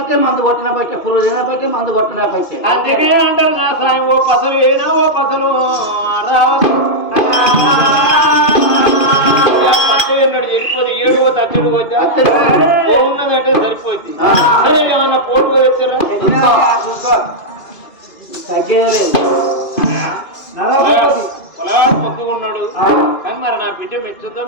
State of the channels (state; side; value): late; right; 2.4 ms